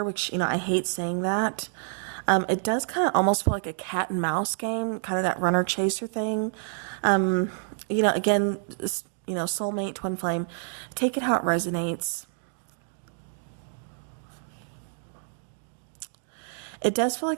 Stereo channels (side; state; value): left; silent; digital silence